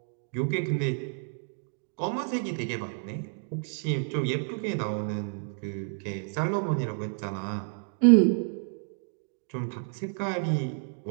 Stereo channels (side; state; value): left; silent; 58 dB below the other